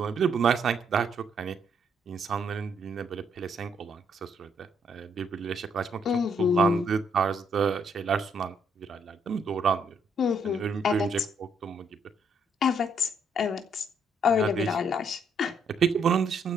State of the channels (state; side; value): normal; both; correlation 0.71